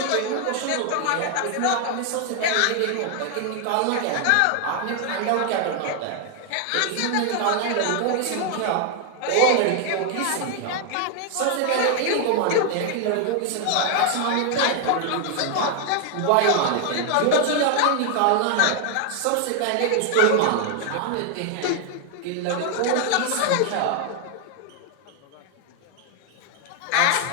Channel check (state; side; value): different; both; correlation 0.00